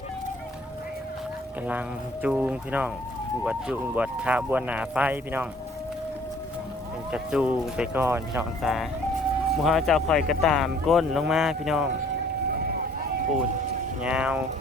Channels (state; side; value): normal; both; correlation 0.57